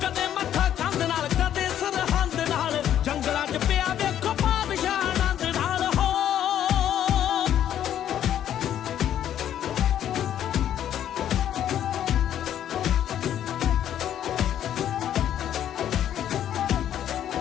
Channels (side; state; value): right; quieter; 10.6 dB